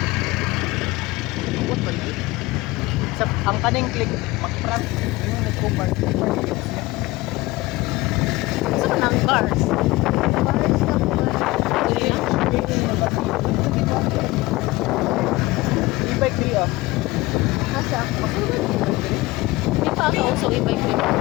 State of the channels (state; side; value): quieter; right; 20.5 dB